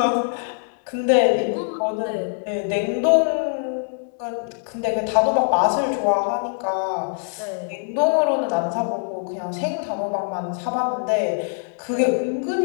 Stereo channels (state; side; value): silent; right; digital silence